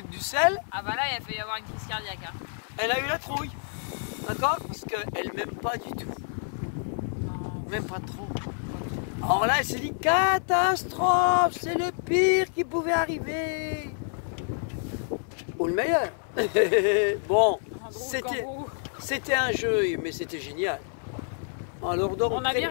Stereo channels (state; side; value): silent; right; 57 dB below the other